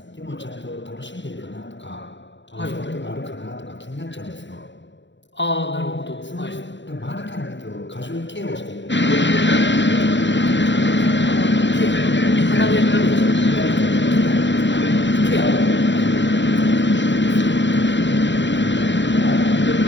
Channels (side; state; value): right; late; 0.53 ms